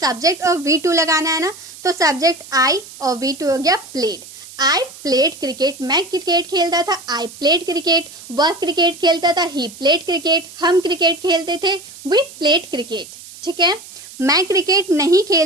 और V2 लगाना है ना, तो सब्जेक्ट आई और V2 हो गया प्लेड। आई प्लेड क्रिकेट, मैं क्रिकेट खेलता था, आई प्लेड क्रिकेट। वह क्रिकेट खेलता था, ही प्लेड क्रिकेट। हम क्रिकेट खेलते थे, वी प्लेड क्रिकेट। ठीक है, मैं क्रिकेट नहीं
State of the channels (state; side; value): noise; right; hiss, 17 dB below the sound